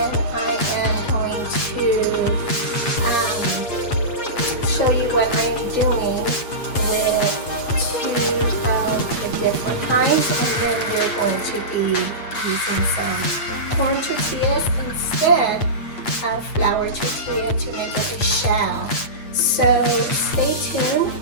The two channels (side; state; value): right; late; 8.5 ms